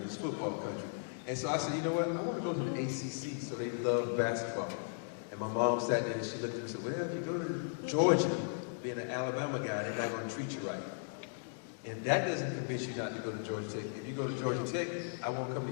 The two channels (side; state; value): right; silent; digital silence